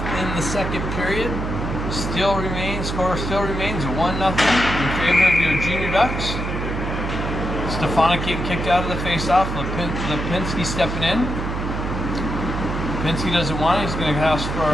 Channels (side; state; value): right; noise; hum, 4 dB below the sound